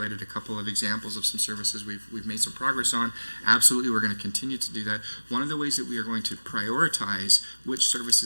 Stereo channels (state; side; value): inverted; both; correlation -1.00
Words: a couple of examples of some services we've made some progress on. Absolutely, we're going to continue to do that. One of the ways that we are going to prioritize which